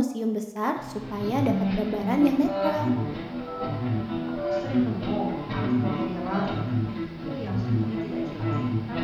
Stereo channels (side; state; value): both; identical; correlation 1.00